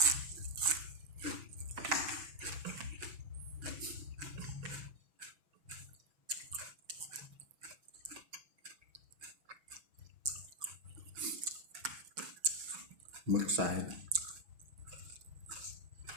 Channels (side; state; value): left; late; 6.2 ms